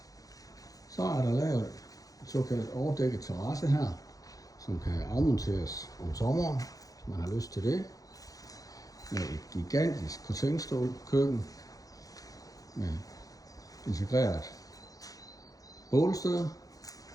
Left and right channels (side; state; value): right; late; 0.17 ms